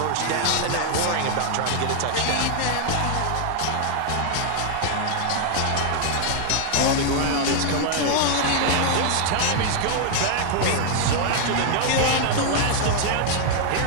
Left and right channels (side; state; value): both; different; correlation 0.00